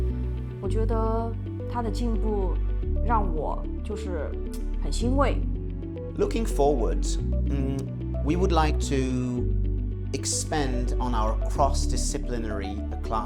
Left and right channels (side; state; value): both; identical; correlation 1.00